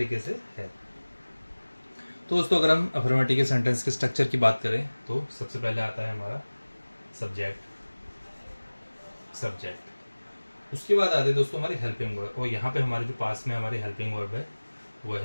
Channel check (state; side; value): inverted; both; correlation -1.00